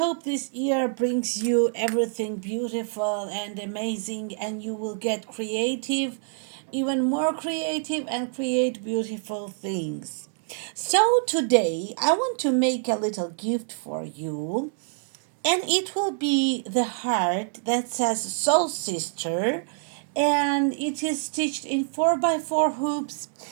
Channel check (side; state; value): left; silent; digital silence